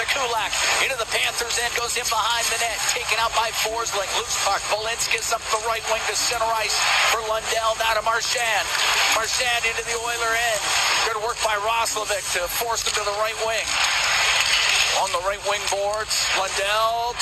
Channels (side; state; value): both; identical; correlation 1.00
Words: Kulak. Into the Panthers end, goes in behind the net. Taken out by Forsling. Loose puck. Belinsky's up the right wing to center ice for Lundell. Now to Marchand. Marchand into the Oiler end. Good work by Roslovic to force him to the right wing. On the right wing boards, Lundell